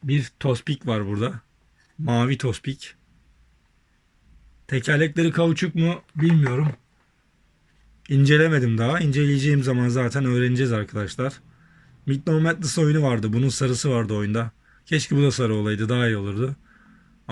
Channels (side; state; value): both; identical; correlation 1.00